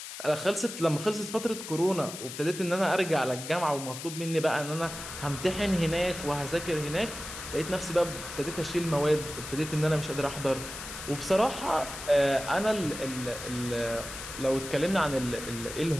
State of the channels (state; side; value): noise; left; hiss, 10 dB below the sound